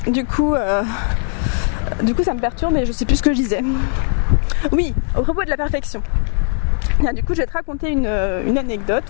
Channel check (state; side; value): silent; right; 57 dB below the other